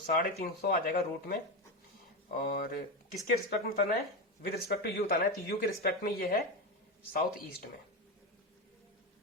आ जाएगा रूट में। और किसके रिस्पेक्ट में बताना है, विद रिस्पेक्ट टू यू बताना है, तो यू के रिस्पेक्ट में ये है साउथ ईस्ट में,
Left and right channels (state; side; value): normal; both; correlation 0.14